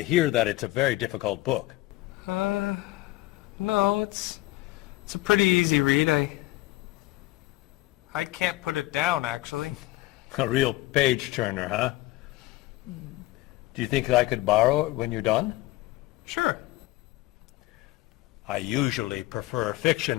hear that it's a very difficult book. No, it's a pretty easy read. I can't put it down, actually. A real page-turner, huh? Do you think I could borrow it when you're done? Sure. I usually prefer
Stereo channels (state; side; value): quieter; right; 18.4 dB